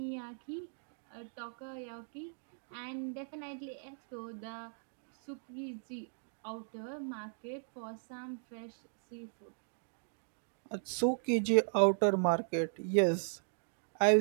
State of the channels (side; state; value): left; silent; digital silence